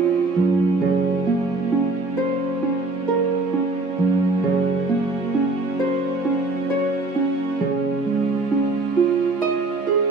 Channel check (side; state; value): left; quieter; 3.2 dB